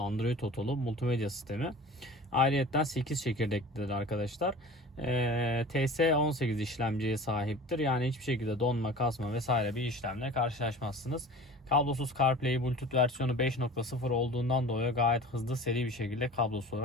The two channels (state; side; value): normal; both; correlation 0.40